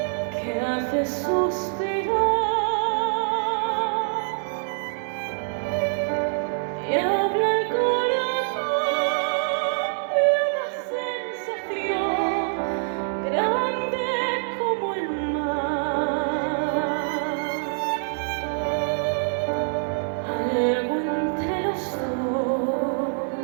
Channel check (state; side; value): silent; left; digital silence